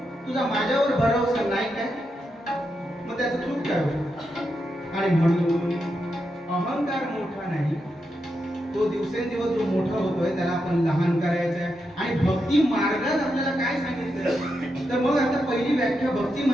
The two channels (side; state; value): both; normal; correlation 0.85